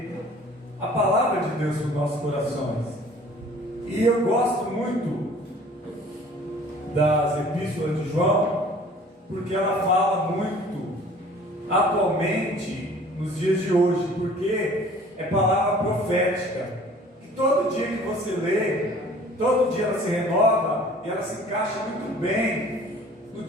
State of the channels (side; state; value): both; normal; correlation 0.50